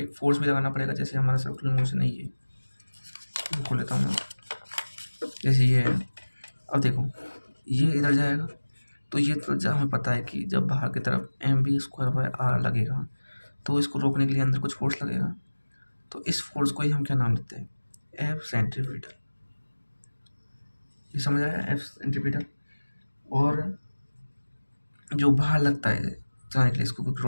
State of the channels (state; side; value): inverted; both; correlation -1.00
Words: फोर्स भी लगाना पड़ेगा। जैसे हमारा सर्कुलर मोशन है, ये खोल लेता हूँ मैं, जैसे ये है। अब देखो, ये इधर जाएगा, तो ये तो हमें पता है कि जब बाहर की तरफ mv² लगेगा, तो इसको रोकने के लिए अंदर कुछ फोर्स लगेगा। तो इस फोर्स को ही हम क्या नाम देते हैं, एफ सेंट्रीपिटल। ये समझ आया, एफ सेंट्रीपिटल। और जो बाहर लगता है चलाने के लिए, इसको